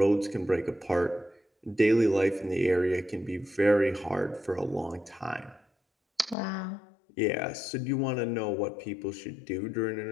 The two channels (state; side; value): drops out; right; at 6.4 s